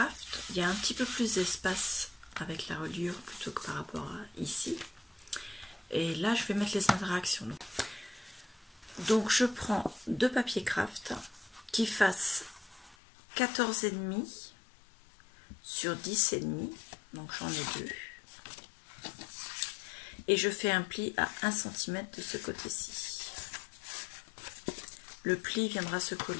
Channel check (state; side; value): drops out; right; at 13.0 s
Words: il y a un petit peu plus d'espace avec la reliure plutôt que par rapport à ici. Et là, je vais mettre les interactions. Donc, je prends deux papiers craft qui fassent 14,5 sur 10,5. Donc, j'en ai deux. Et je fais un pli à 1 cm de ce côté-ci. Le pli viendra se